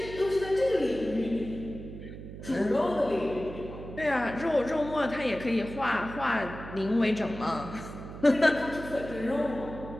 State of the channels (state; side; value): noise; right; hum, 11 dB below the sound